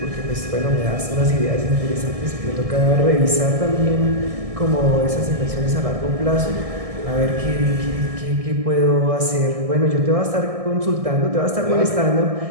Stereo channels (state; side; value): late; left; 1.6 ms